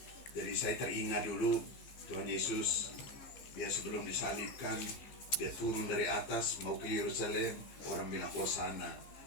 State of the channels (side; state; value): right; late; 15 ms